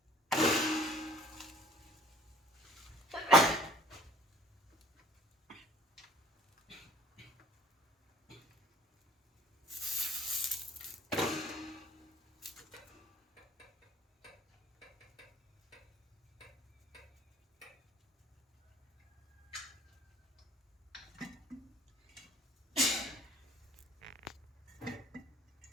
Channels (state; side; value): normal; both; correlation 0.53